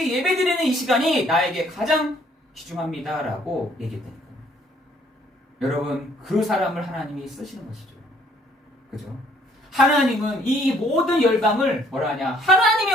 예배드리는 이 시간이 나에게 가장 귀중합니다 라고 얘기했다니까요. 여러분, 그 사람을 하나님이 쓰시는 것이죠. 그죠? 하나님은 이 모든 열방을 뭐라 하냐? 하나님이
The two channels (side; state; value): both; normal; correlation 0.63